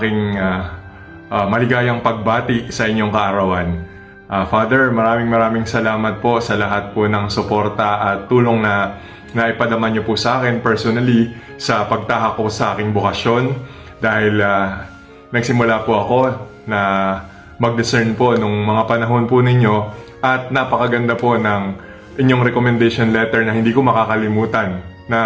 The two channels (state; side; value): identical; both; correlation 1.00